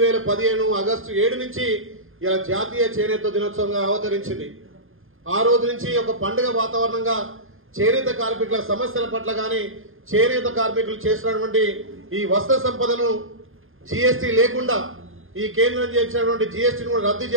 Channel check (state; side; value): late; left; 0.60 ms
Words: ఆగస్టు 7 నుంచి ఇలా జాతీయ చేనేత దినోత్సవంగా అవతరించింది. ఆ రోజు నుంచి ఒక పండుగ వాతావరణంగా చేనేత కార్మికుల సమస్యల పట్ల గాని, చేనేత కార్మికులు చేసినటువంటి ఈ వస్త్ర సంపదను జీఎస్టీ లేకుండా ఈ కేంద్రం చేసినటువంటి జీఎస్టీని కూడా రద్దు